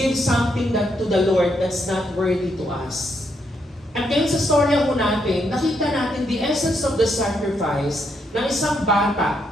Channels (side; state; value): both; normal; correlation 0.77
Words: something that to the Lord that's not worthy to us. At ngayon sa storya ko natin, nakita natin the essence of the sacrifice ng isang